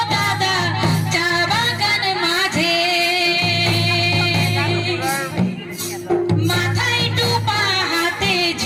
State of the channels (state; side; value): identical; both; correlation 1.00